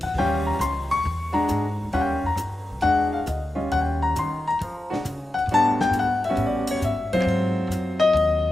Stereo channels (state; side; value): normal; both; correlation 0.91